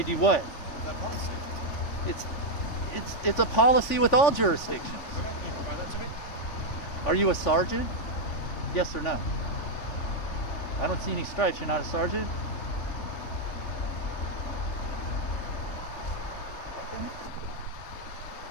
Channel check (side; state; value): right; late; 3.4 ms